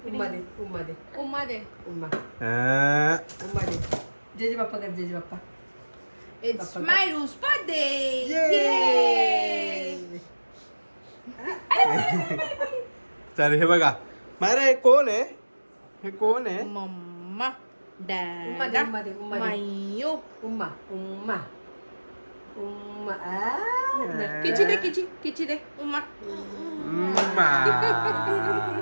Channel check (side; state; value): both; inverted; correlation -1.00